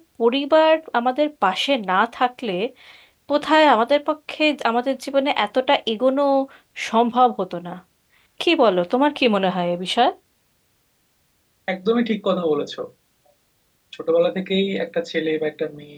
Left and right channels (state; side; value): identical; both; correlation 1.00